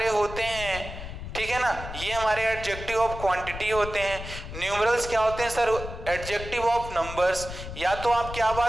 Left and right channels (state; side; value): noise; left; rumble, 10 dB below the sound